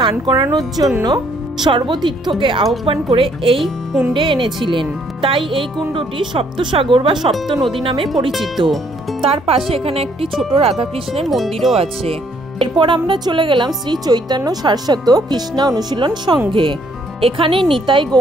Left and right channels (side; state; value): both; normal; correlation 0.66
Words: করানোর জন্য সর্বতীর্থকে আহ্বান করে এই কুণ্ডে এনেছিলেন, তাই এই কুণ্ডটি সপ্তসাগর বা সপ্ত নদী নামে পরিচিত। তার পাশে এখানে একটি ছোট রাধাকৃষ্ণের মন্দিরও আছে। এরপর আমরা চলে গেলাম শ্রী চৈতন্য সারস্বত কৃষ্ণা অনুশীলন সংঘে। এখানে নিতাই